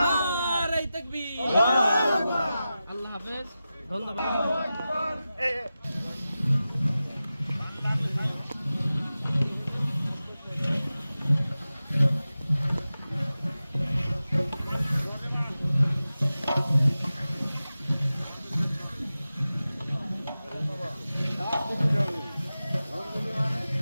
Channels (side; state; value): both; inverted; correlation -0.94